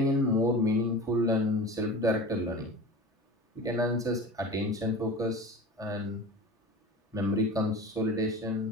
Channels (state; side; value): normal; both; correlation 0.34